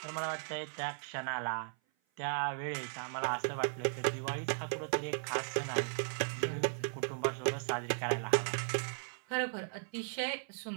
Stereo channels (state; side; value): silent; left; 53 dB below the other